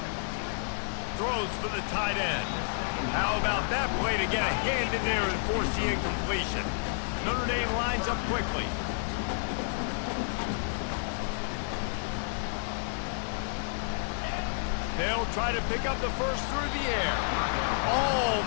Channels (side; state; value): right; silent; digital silence